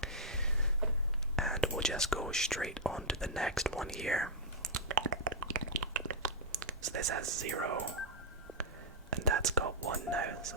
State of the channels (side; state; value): both; normal; correlation -0.05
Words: And we'll just go straight on to the next one here. So this has 0, and that's got 1 now, so